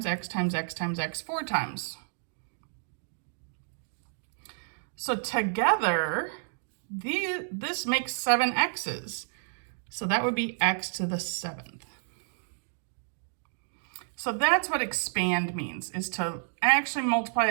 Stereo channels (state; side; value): silent; left; digital silence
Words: x times x times x 4 times. So together, this makes 7 x's. So that would be x to the 7th. So that's what expand means, is to actually multiply